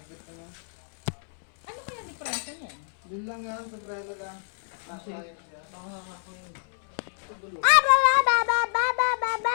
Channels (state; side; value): silent; right; 60 dB below the other